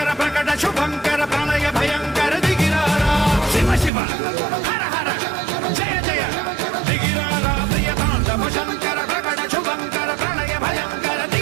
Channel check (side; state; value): left; drops out; at 3.9 s